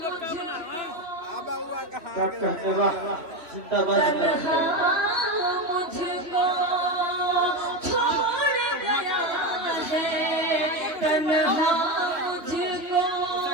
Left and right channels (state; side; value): late; left; 2.8 ms